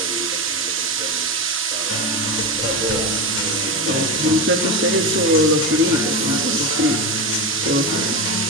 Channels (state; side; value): normal; both; correlation 0.17